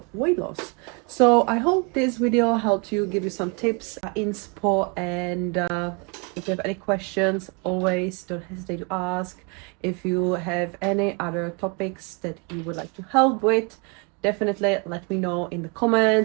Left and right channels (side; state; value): left; quieter; 32.6 dB